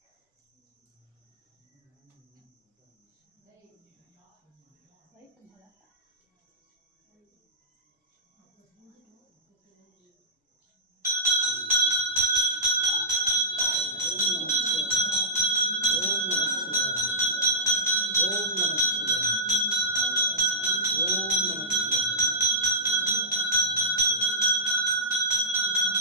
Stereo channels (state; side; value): normal; both; correlation -0.12